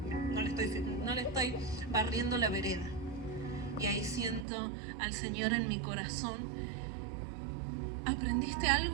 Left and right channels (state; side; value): drops out; left; at 4.5 s